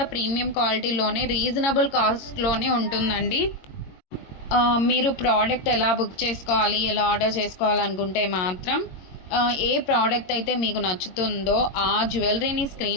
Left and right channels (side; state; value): right; late; 22 ms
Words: ప్రీమియం క్వాలిటీలోనే రీజనబుల్ కాస్ట్లోనే ఉంటుందండి. మీరు ప్రోడక్ట్ ఎలా బుక్ చేసుకోవాలి, ఎలా ఆర్డర్ చేసుకోవాలనుకుంటే మాత్రం ఏ ప్రోడక్ట్ అయితే మీకు నచ్చుతుందో ఆ జ్యువెలరీని